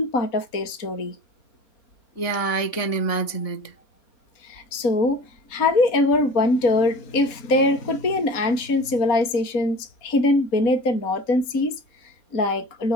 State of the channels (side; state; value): right; late; 4.1 ms